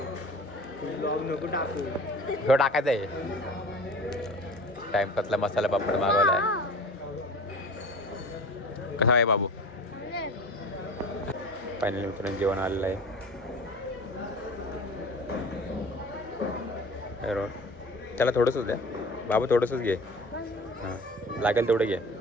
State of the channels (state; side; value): normal; both; correlation 0.39